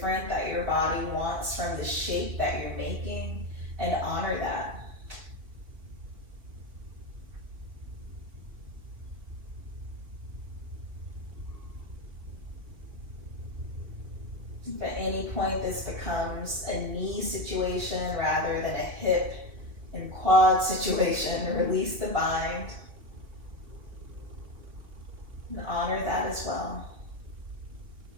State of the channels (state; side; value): late; left; 4.2 ms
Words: that your body wants from the shape that you're making, and honor that. If at any point this becomes a knee situation rather than a hip and quad situation, release the bind and honor that as well.